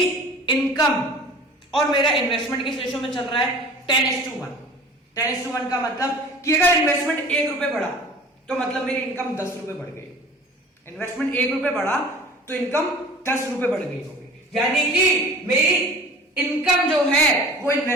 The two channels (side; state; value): both; normal; correlation 0.43